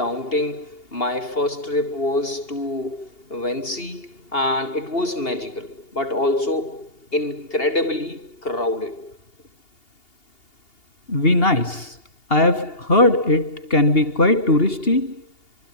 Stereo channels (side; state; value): right; late; 2.8 ms